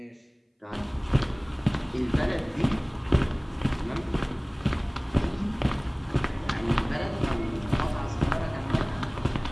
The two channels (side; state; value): both; identical; correlation 1.00